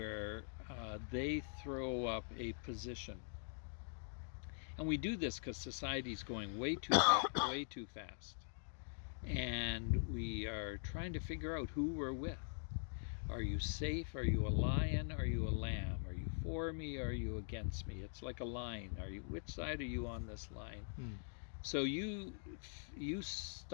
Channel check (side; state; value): right; silent; digital silence